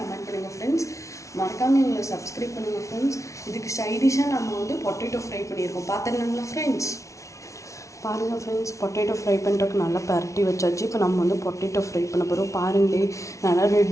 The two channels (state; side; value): late; right; 0.15 ms